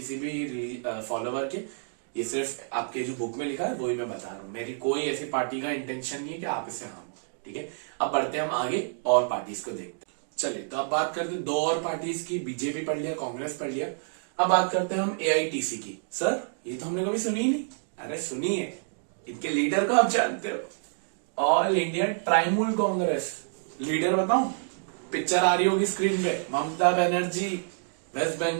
भी फॉलोवर के, ये सिर्फ आपके जो बुक में लिखा है वही मैं बता रहा हूँ। मेरी कोई ऐसी पार्टी का इंटेंशन नहीं है कि आप इसे हम, ठीक है। अब बढ़ते हैं हम आगे और पार्टीज को देखते हैं। चलिए, तो अब बात करते हैं दो और पार्टीज की, बीजेपी पढ़ लिया, कांग्रेस पढ़ लिया। अब बात करते हैं हम एआईटीसी की। सर ये तो हमने कभी सुनी ही नहीं। अरे सुनिए, इनके लीडर को आप जानते हो, ऑल इंडिया ट्राइमूल कांग्रेस। लीडर बताऊं, पिक्चर आ रही होगी स्क्रीन पे, ममता बनर्जी, वेस्ट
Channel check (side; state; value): left; silent; digital silence